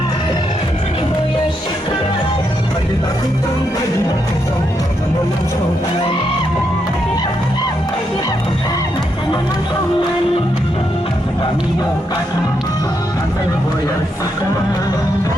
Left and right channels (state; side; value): normal; both; correlation 0.80